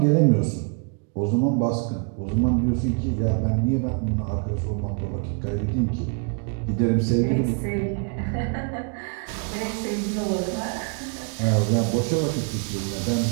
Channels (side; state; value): left; quieter; 35.9 dB